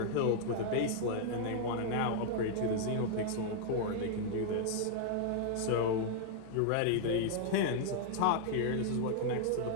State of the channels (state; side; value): different; both; correlation -0.01